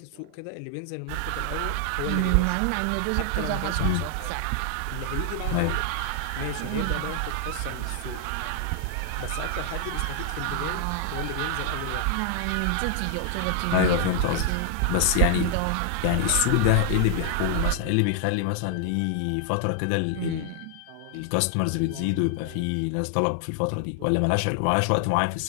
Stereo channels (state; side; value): different; both; correlation 0.00